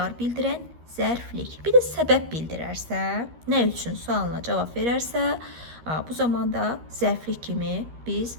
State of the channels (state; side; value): late; left; 13 ms